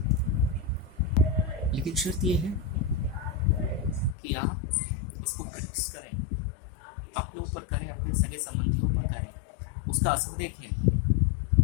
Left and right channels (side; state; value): right; drops out; at 4.2 s